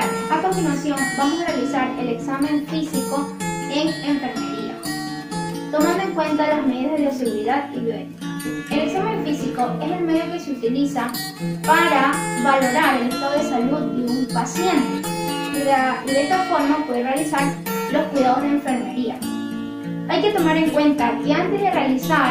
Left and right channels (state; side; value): identical; both; correlation 1.00